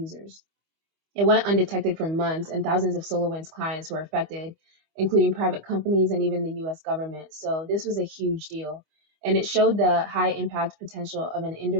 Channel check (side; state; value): left; late; 25 ms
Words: It went undetected for months, and thousands of SolarWinds clients were affected, including private companies and even the US government. So this was a huge deal, and it showed the high impact potential of an